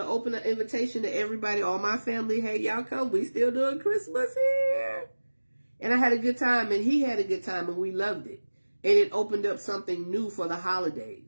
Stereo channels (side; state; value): both; inverted; correlation -1.00